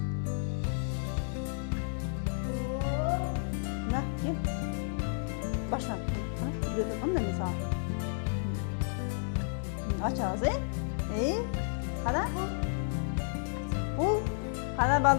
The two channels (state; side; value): silent; right; digital silence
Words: На, кел. Баштан. Кана, үйрөтүп атам да мен сага. Ачабыз, Кана? Бул кана